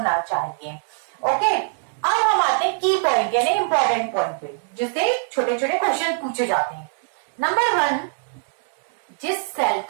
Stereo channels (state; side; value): silent; left; digital silence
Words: चाहिए। ओके, अब हम आते हैं की पॉइंट यानी इंपॉर्टेंट पॉइंट पे, जिससे छोटे छोटे क्वेश्चन पूछे जाते हैं। नंबर 1, जिस सेल